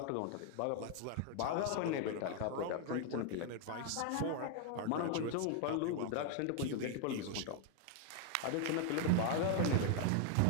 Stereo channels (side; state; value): both; different; correlation 0.00